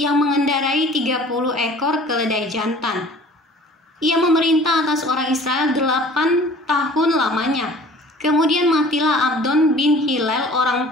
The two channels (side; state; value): both; normal; correlation 0.48